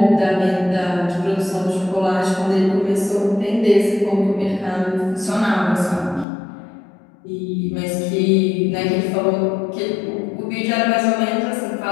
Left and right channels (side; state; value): right; drops out; at 6.2 s